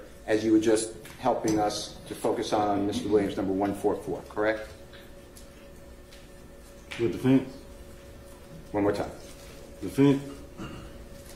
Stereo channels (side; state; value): both; identical; correlation 1.00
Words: as you were just helping us to focus on Mr. Williams number 144, correct? With the fence? One more time. The fence?